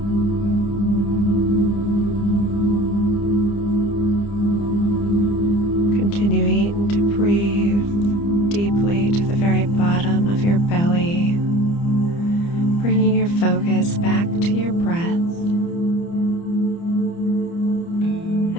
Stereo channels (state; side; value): late; right; 30 ms